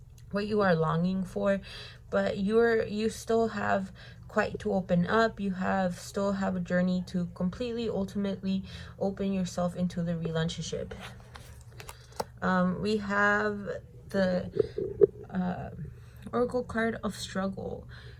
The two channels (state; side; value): identical; both; correlation 1.00